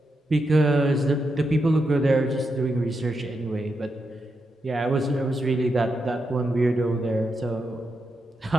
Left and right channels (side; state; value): both; normal; correlation 0.85